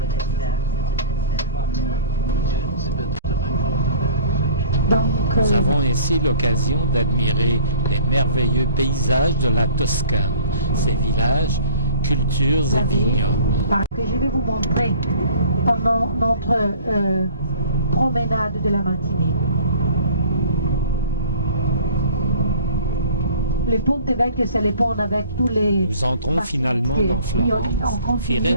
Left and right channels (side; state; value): both; inverted; correlation -0.48